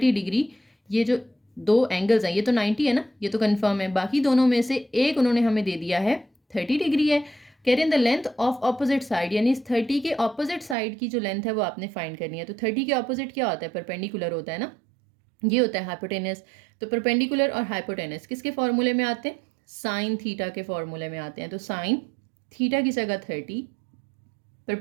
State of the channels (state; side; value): drops out; left; at 10.8 s